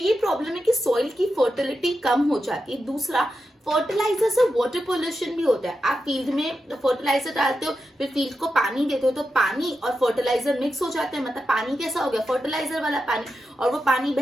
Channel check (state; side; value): normal; both; correlation 0.89